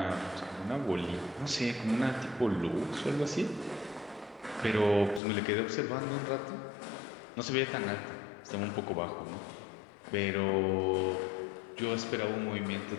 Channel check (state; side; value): drops out; right; at 5.2 s